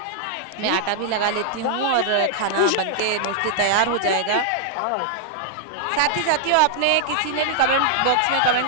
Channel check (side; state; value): both; different; correlation -0.01